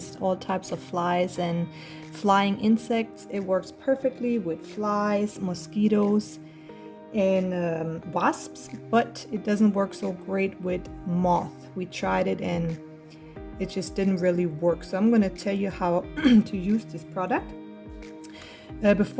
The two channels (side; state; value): both; identical; correlation 1.00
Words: all types of flies and flying insects. It works perfectly with flies, mosquitoes, and wasps, but it doesn't work so great with moth. We tried it and it just didn't really work. So I'm going to tell you how to use this product.